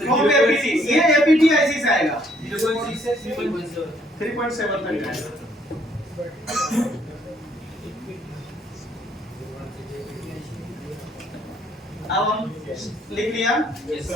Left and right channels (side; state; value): both; normal; correlation 0.66